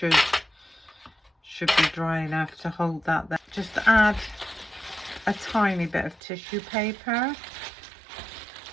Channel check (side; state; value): left; drops out; at 6.2 s